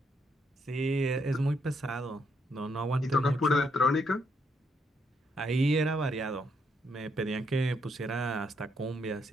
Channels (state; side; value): normal; both; correlation 0.75